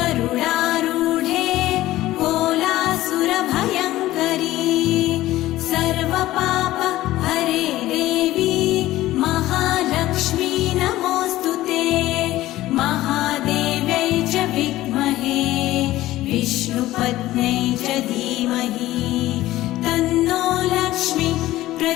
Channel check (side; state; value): right; quieter; 15.8 dB